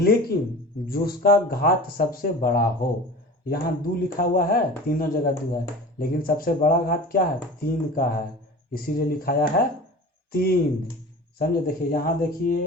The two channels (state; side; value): normal; both; correlation 0.37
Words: जो उसका घात सबसे बड़ा हो। यहाँ 2 लिखा हुआ है, तीनों जगह 2 है, लेकिन सबसे बड़ा घात क्या है 3 का है, इसीलिए लिखाया है 3। समझे? देखिए यहाँ